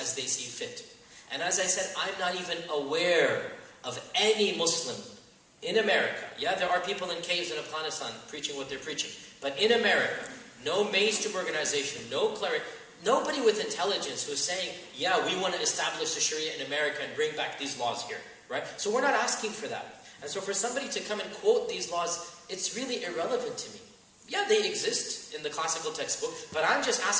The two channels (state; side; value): identical; both; correlation 1.00